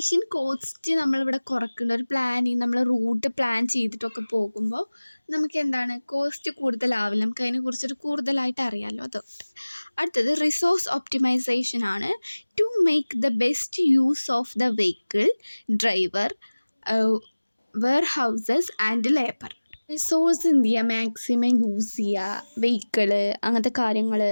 cost നമ്മളിവിടെ കുറയ്ക്കേണ്ട ഒരു പ്ലാനിങ്. നമ്മൾ റൂട്ട് പ്ലാൻ ചെയ്തിട്ടൊക്കെ പോകുമ്പോൾ നമുക്ക് കോസ്റ്റ് കൂടുതലാവില്ല. നമുക്ക് അതിനെക്കുറിച്ചൊരു കൂടുതലായിട്ട് അറിയാമല്ലോ. അതുകൊണ്ട് അടുത്തത് റിസോഴ്സ് ഒപ്റ്റിമൈസേഷൻ ആണ്. To make the best use of the vehicle, driver, warehouses and labour. Resource എന്ത് ചെയ്യുക? മാക്സിമം യൂസ് ചെയ്യുക. വെഹിക്കിള്, അങ്ങനത്തെ കാര്യങ്ങൾ,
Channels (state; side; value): inverted; both; correlation -1.00